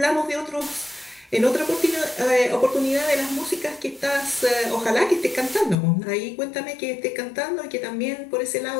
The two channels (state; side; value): drops out; right; at 5.8 s